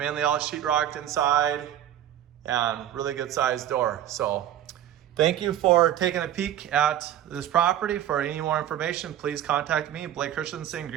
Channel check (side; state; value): left; quieter; 11.4 dB